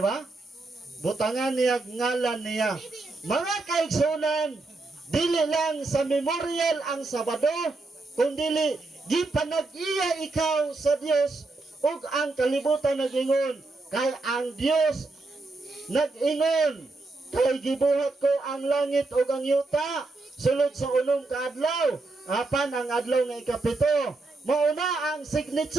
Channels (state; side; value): quieter; left; 3.4 dB